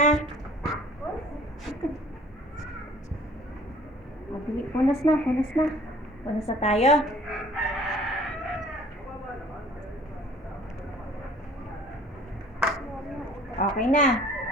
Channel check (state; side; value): normal; both; correlation 0.52